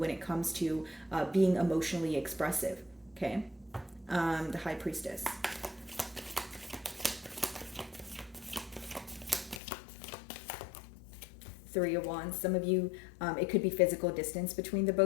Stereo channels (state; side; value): drops out; right; at 9.6 s